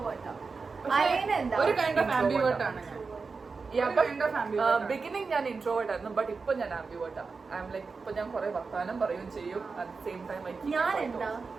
ഒരു കൈൻഡ് ഓഫ് ആംബിവേർട്ട് ആണ് ഞാൻ. ബിഗിനിങ് ഞാൻ ഇൻട്രോവേർട്ട് ആയിരുന്നു, ബട്ട് ഇപ്പൊ ഞാൻ ആംബിവേർട്ട് ആണ്. ഐ എം ലൈക്ക് ഇപ്പൊ ഞാൻ കുറെ വർത്താനം പറയുകയും ചെയ്യും, അറ്റ് ദ സെയിം ടൈം ഞാൻ എന്താ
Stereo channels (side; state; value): left; quieter; 4.6 dB